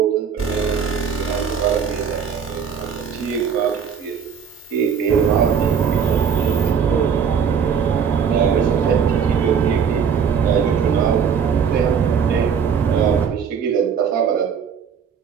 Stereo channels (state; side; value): quieter; left; 7.0 dB